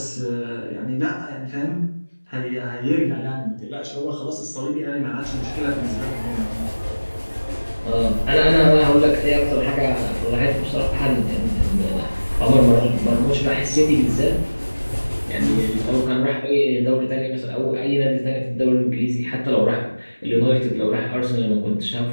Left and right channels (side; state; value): both; inverted; correlation -1.00